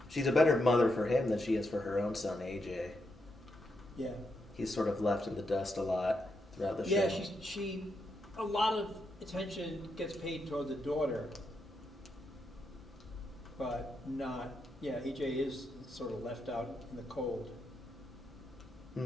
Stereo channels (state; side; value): normal; both; correlation 0.82